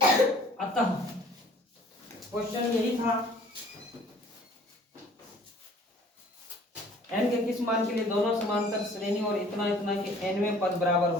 अतः क्वेश्चन यही था, n के किस मान के लिए दोनों समांतर श्रेणी और इतना इतना के nवें पद बराबर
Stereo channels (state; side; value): normal; both; correlation 0.53